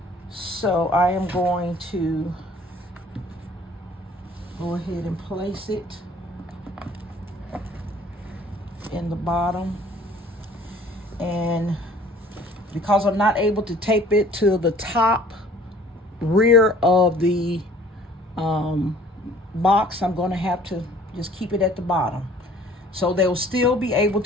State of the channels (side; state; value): both; normal; correlation 0.53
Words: So I am going to go ahead and place it in the bottom. And because I'm not able to tape it to the top rear of the box, I'm going to have to just keep it at the bottom. So they'll still be able